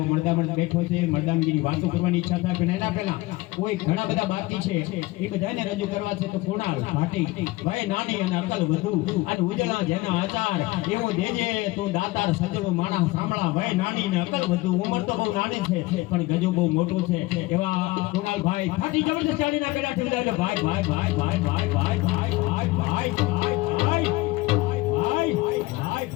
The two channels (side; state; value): right; quieter; 20.5 dB